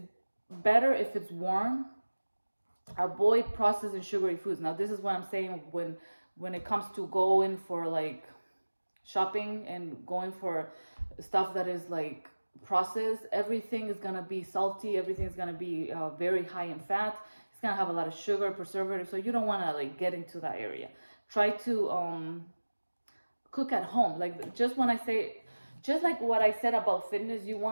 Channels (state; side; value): inverted; both; correlation -1.00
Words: better if it's warm. Avoid processed and sugary foods. Now, this is what I'm saying when it comes to going for like shopping and going for stuff that is like processed. Everything is gonna be salty. Everything is gonna be very high in fat. It's gonna have a lot of sugar, preservative. So you don't want to like get into that area. Try to cook at home. Like, just when I say, just like what I said about fitness, you